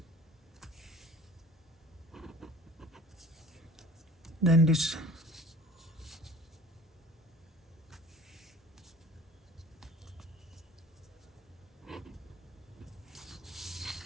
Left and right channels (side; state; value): both; normal; correlation 0.45